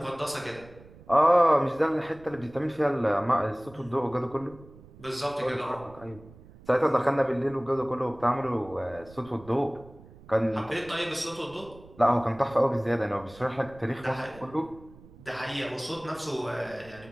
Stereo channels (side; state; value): right; noise; rumble, 21 dB below the sound